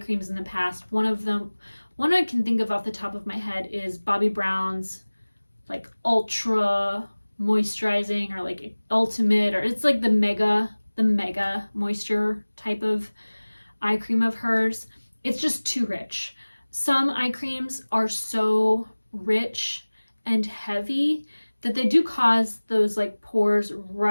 in the past. One I can think of off the top of my head is Bobbi Brown's like ultra moisturizing, or like ultimate, or it's like the mega moisture type of eye cream of hers. It's just too rich. Some eye creams are so rich and heavy that they do cause those like pores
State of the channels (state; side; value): inverted; both; correlation -1.00